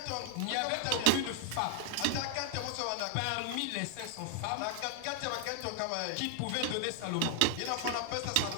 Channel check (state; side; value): different; both; correlation 0.00